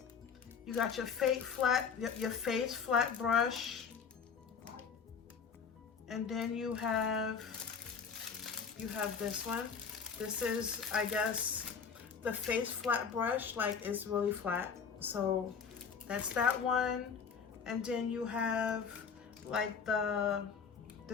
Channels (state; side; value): quieter; right; 6.3 dB